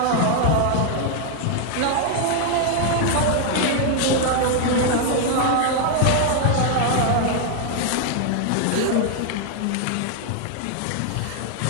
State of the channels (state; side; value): different; both; correlation 0.00